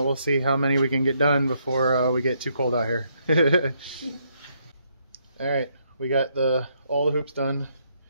see how many we can get done before we get too cold out here. All right, we got all the hoops done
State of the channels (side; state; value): both; inverted; correlation -0.73